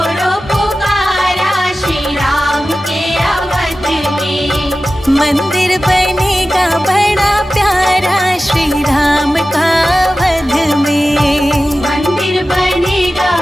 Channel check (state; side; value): normal; both; correlation 0.95